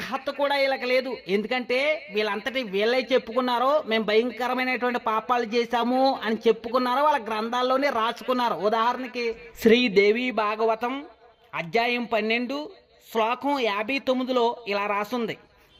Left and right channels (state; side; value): identical; both; correlation 1.00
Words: కూడా వీళ్ళకి లేదు. ఎందుకంటే వీళ్ళంతటి వీళ్ళే చెప్పుకున్నారో మేము భయంకరమైనటువంటి పాపాలు చేశాము అని చెప్పుకున్నారో వాళ్ళ గ్రంథాల్లోనే రాసుకున్నారు. ఉదాహరణకి శ్రీదేవి భాగవతం అధ్యాయం 12 శ్లోకం 59లో ఇలా రాసుంది: